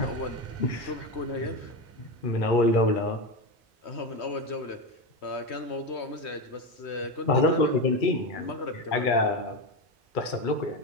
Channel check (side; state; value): both; normal; correlation 0.15